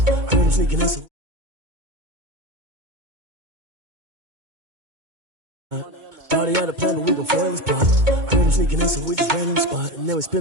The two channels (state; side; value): late; left; 2.2 ms